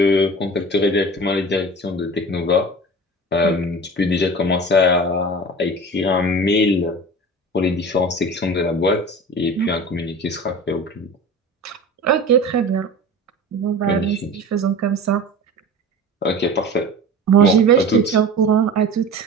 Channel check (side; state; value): both; normal; correlation 0.35